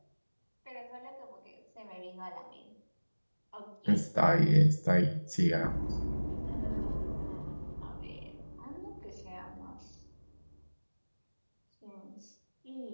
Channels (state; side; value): inverted; both; correlation -1.00